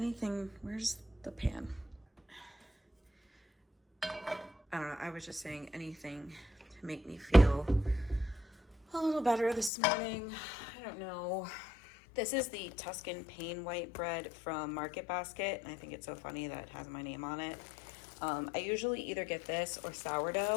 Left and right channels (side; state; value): right; drops out; at 9.7 s